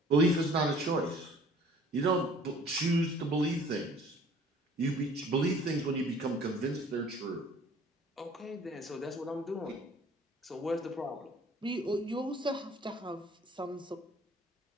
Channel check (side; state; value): both; normal; correlation 0.52